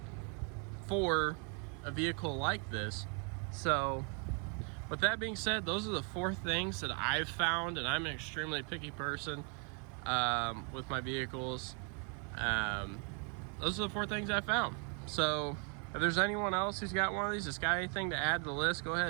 for a vehicle like this. So with that being said, those are the 4 things that I've found, and I'm an extremely picky person with my vehicles. Those are the 4 things I found. So if there's anyone else who's got one of these that's got anything to add to the list, go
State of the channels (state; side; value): quieter; left; 38.4 dB